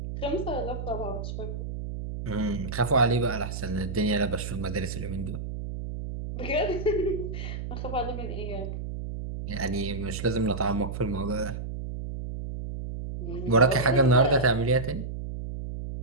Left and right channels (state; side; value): noise; right; hum, 6 dB below the sound